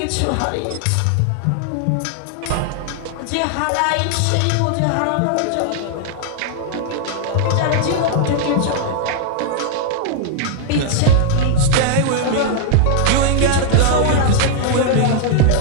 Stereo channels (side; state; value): both; different; correlation 0.00